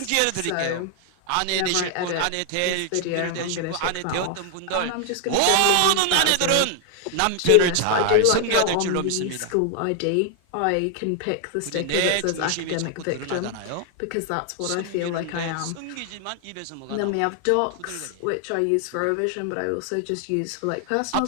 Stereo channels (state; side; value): different; both; correlation 0.00